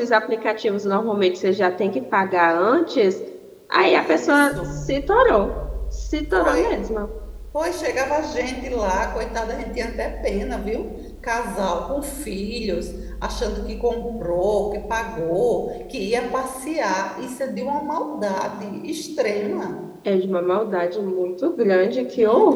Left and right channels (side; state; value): both; identical; correlation 1.00